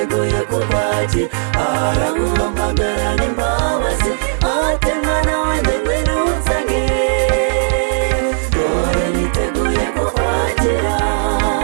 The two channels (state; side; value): silent; left; digital silence